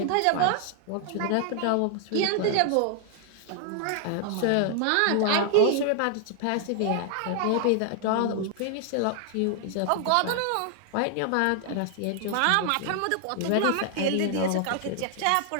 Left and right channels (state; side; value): different; both; correlation 0.00